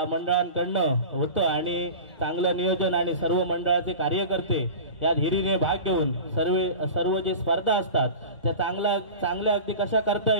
मंडळांकडनं होतं आणि चांगलं नियोजन आणि सर्व मंडळाचे कार्यकर्ते या हिरीने भाग घेऊन सर्व जे स्पर्धा असतात त्या चांगल्या अगदी कशा करता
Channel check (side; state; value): both; inverted; correlation -0.34